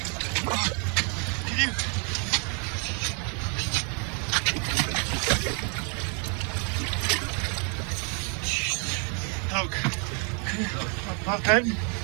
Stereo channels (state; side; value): quieter; left; 39.0 dB